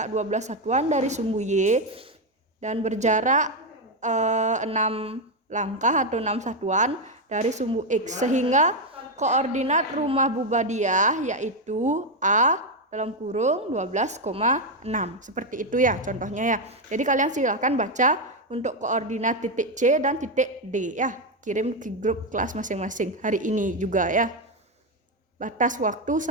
12 satuan dari sumbu Y dan berjarak 6 langkah atau 6 satuan dari sumbu X, sehingga koordinat rumah Bu Badiah yaitu A dalam kurung 12,6. Seperti itu ya contohnya ya. Jadi kalian silahkan baca untuk koordinat titik C dan titik D ya. Kirim ke grup kelas masing-masing hari ini juga ya. Batas waktu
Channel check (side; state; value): both; normal; correlation 0.06